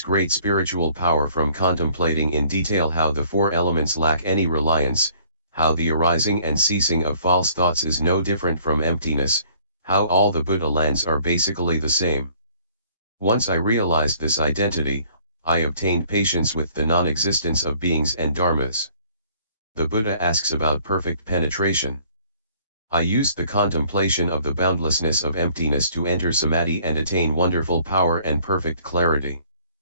great spiritual power from contemplating in detail how the 4 elements lack any reliance, how the arising and ceasing of false thoughts is no different from emptiness, how all the Buddha lands are basically the same. Once I realized this identity, I obtained patience with the non-existence of beings and dharmas. The Buddha asks about perfect penetration. I used the contemplation of the boundlessness of emptiness to enter Samadhi and attain wonderful power and perfect clarity.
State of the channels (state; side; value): inverted; both; correlation -0.58